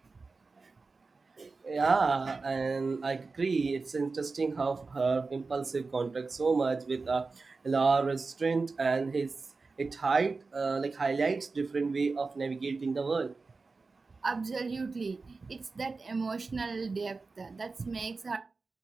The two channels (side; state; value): left; quieter; 4.1 dB